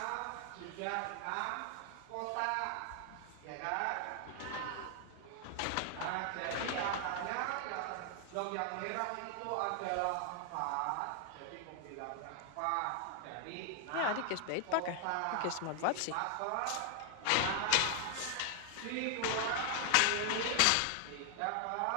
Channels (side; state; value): both; different; correlation 0.00